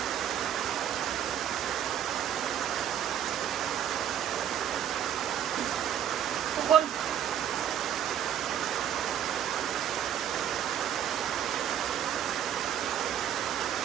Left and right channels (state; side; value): quieter; left; 9.8 dB